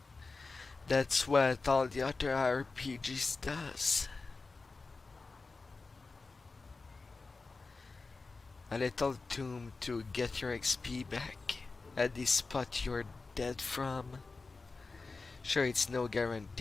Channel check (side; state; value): right; quieter; 3.9 dB